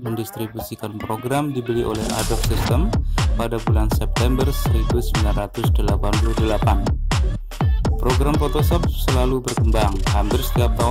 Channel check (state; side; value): identical; both; correlation 1.00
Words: mendistribusikan program dibeli oleh Adobe System pada bulan September 1988. Program Photoshop selalu berkembang, hampir setiap